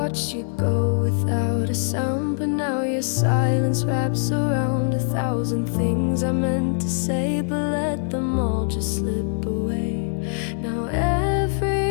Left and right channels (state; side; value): silent; right; 64 dB below the other